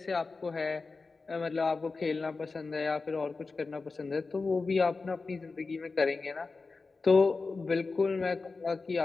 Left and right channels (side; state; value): right; quieter; 4.1 dB